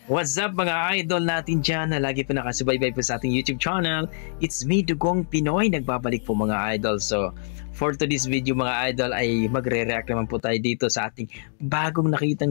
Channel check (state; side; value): silent; right; digital silence